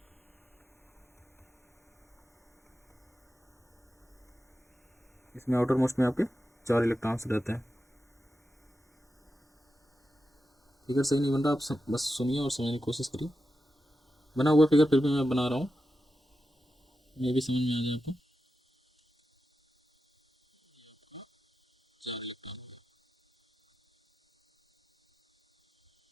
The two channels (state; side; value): normal; both; correlation 0.90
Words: इसमें आउटर मोस्ट में आपके 4 इलेक्ट्रॉन्स रहते हैं। फिगर सही नहीं बन रहा, आप बस सुनिए और समझने की कोशिश करिए। बना हुआ फिगर फिर भी मैं बना रहा हूँ, ये भी समझ में आ जाए आपको।